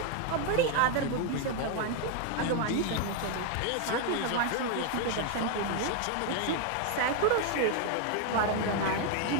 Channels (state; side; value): different; both; correlation 0.01